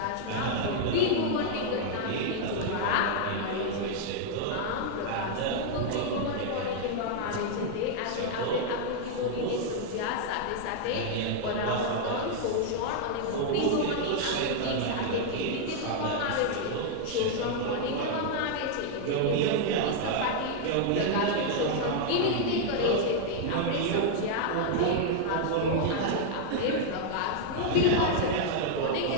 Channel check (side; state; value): both; different; correlation -0.01